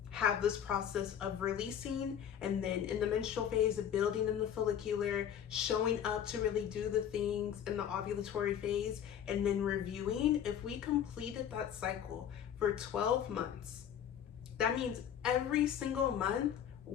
have this process of releasing, and then in the menstrual phase of building in the follicular, showing up to really do the things in the ovulatory phase, and then reviewing, if we completed that cycle for 12 months, that means every single month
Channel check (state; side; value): quieter; right; 9.3 dB